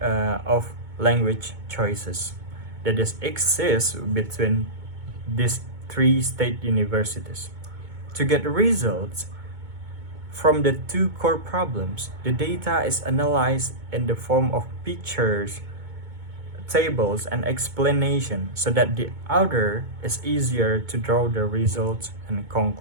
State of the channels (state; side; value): late; left; 2.2 ms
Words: of language choices that exists between these 3 state universities. To get results from the two core problems, the data is analyzed in the form of pictures, tables, and explanation so that the author is easier to draw the results and